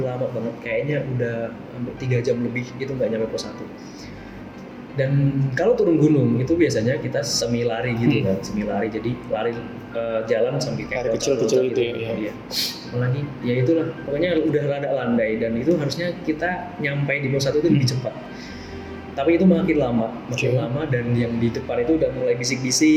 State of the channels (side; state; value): both; identical; correlation 1.00